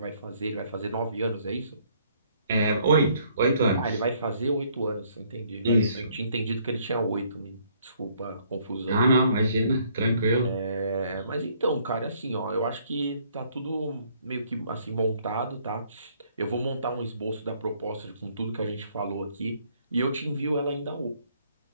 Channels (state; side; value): inverted; both; correlation -0.65